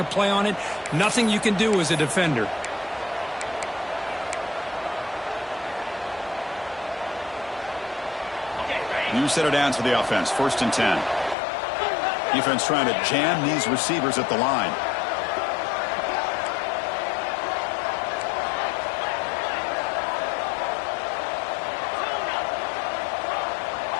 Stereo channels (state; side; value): drops out; right; at 11.4 s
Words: play on it. Nothing you can do as a defender. New set of downs for the offense. 1st and 10. Defense trying to jam these receivers at the line.